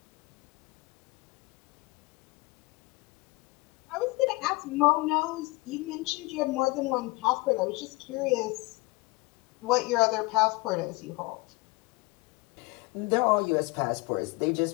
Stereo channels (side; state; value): right; quieter; 24.3 dB